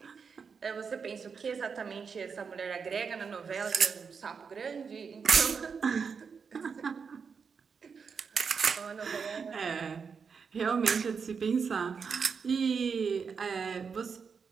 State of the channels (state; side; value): quieter; left; 5.9 dB